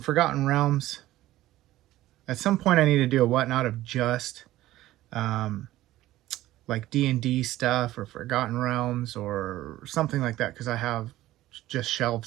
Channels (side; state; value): left; quieter; 15.5 dB